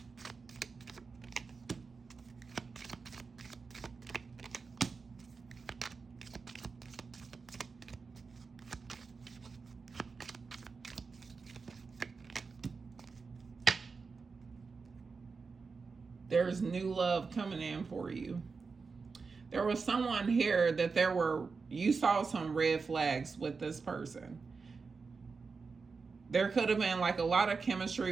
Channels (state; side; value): quieter; left; 4.8 dB